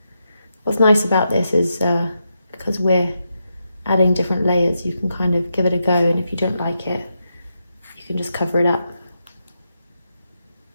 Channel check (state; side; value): inverted; both; correlation -0.85